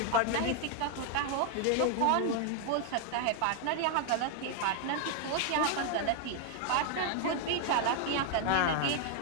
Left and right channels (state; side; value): different; both; correlation 0.00